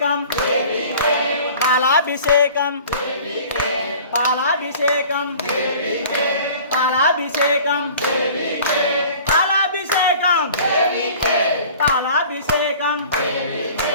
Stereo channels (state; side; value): inverted; both; correlation -0.46